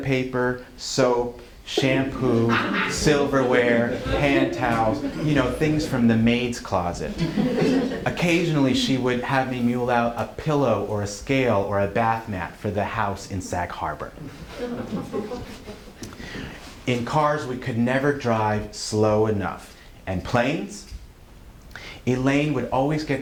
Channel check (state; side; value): identical; both; correlation 1.00